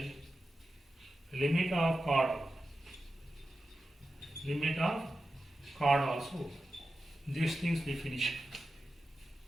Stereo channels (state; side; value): normal; both; correlation 0.91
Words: limit of chord. Limit of chord also. These things we finish